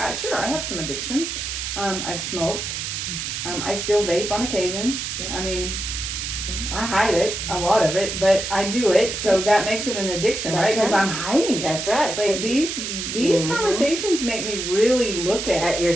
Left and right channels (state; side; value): noise; right; hiss, 4 dB below the sound